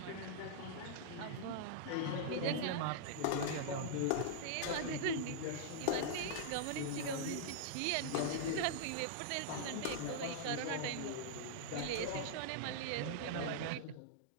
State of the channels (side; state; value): both; different; correlation -0.01